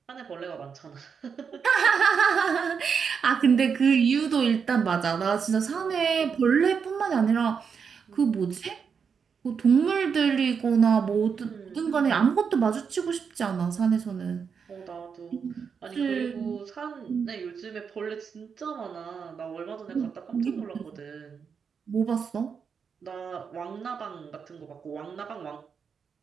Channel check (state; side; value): quieter; left; 6.3 dB